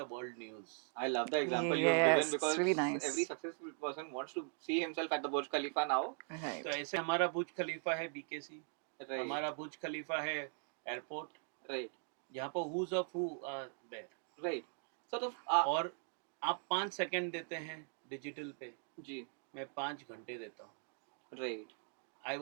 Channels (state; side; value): silent; left; 51 dB below the other